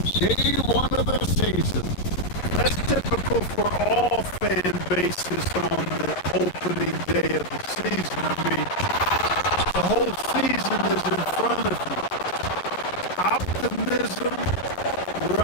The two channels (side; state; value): right; late; 11 ms